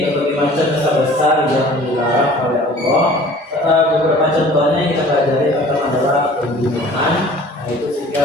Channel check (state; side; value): normal; both; correlation 0.48